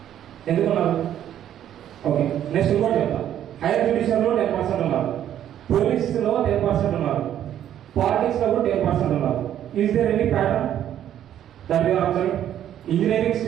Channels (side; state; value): left; quieter; 10.8 dB